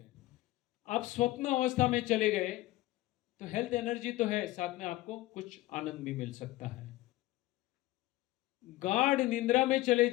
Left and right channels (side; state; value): right; quieter; 17.5 dB